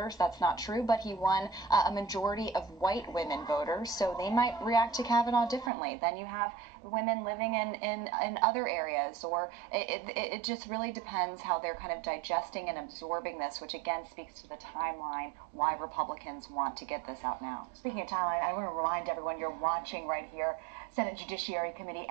That's not true, but he won a majority of white women voters. So they might react to Kavanaugh differently. Then you have women living in other areas, or it just really depends how they're kind of digesting and absorbing this, which again speaks to the timeline, why Republicans want to get this out now. Speaking of timeline, I want to remind everyone you're watching right here, Senate Judiciary Committee.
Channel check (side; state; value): left; drops out; at 5.7 s